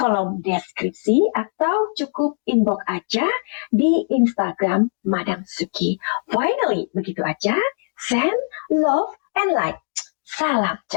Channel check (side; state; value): right; silent; digital silence